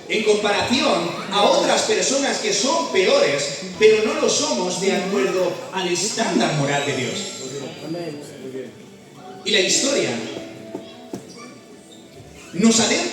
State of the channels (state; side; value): identical; both; correlation 1.00